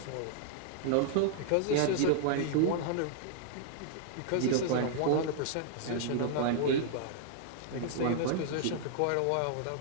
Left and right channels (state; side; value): different; both; correlation -0.01